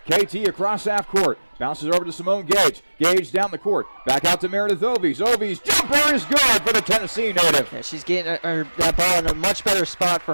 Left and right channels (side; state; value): both; inverted; correlation -1.00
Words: KT across half court. Bounces over to Simone Gage. Gage down the court. Back out to Meredith Ovies. Ovies jumper is good for the Tennessee native. Yeah, she's getting that ball in a much better spot for